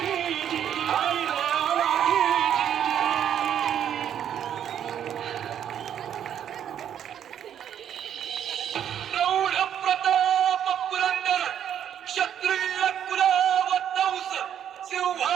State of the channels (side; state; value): left; quieter; 9.6 dB